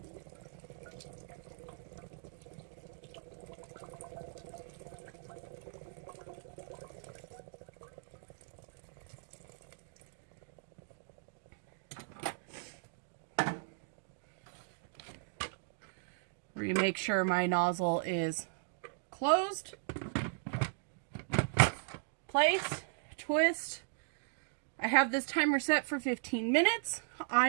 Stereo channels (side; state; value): left; silent; digital silence